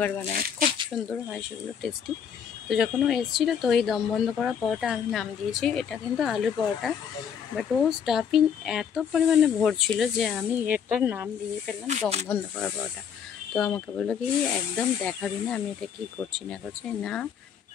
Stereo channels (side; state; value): right; quieter; 7.7 dB